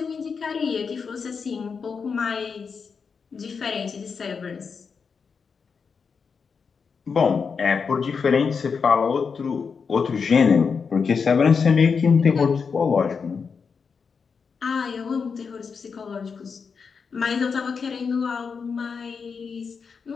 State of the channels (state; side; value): quieter; right; 5.6 dB